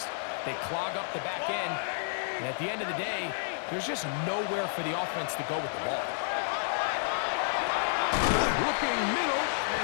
They clog up the back end. And at the end of the day, there's just nowhere for the offense to go with the ball. Looking middle,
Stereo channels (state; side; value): silent; right; digital silence